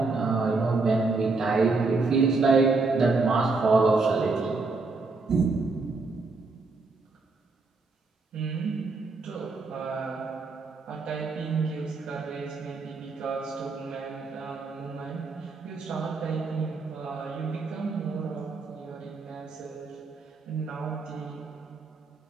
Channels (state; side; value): quieter; left; 3.8 dB